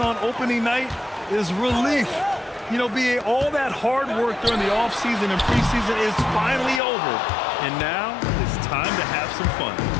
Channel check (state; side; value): drops out; right; at 6.8 s